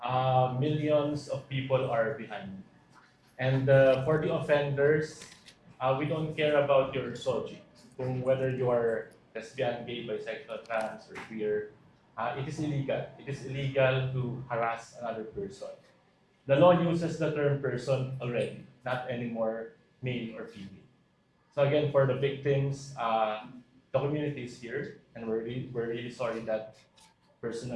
Millions of people are behind. And for the offenders, we don't care about your soji. Kung whether you are lesbian, gay, bisexual, trans, or queer, it is illegal. It is illegal to harass another person. The law uses the term person already, not anymore male or female. So again, for the victims, the community is here, and we're really sorry that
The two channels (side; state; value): both; identical; correlation 1.00